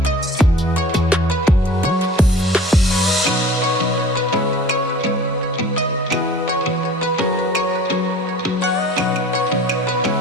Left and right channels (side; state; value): both; normal; correlation 0.44